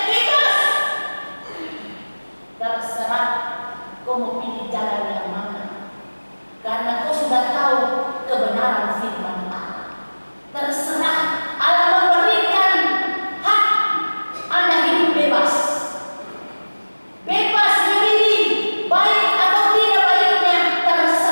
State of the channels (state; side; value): inverted; both; correlation -1.00